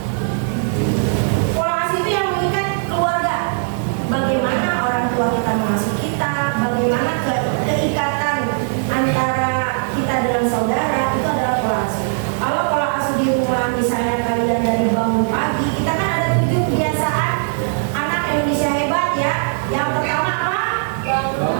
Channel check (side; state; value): left; silent; digital silence